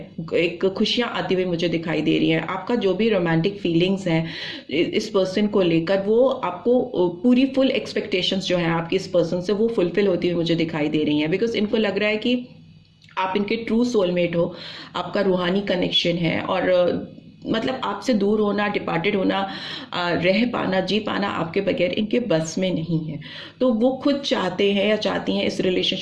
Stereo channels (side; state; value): both; identical; correlation 1.00